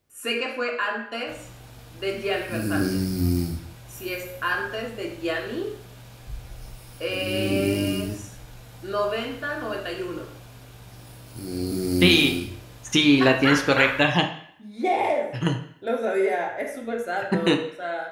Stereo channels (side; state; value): both; identical; correlation 1.00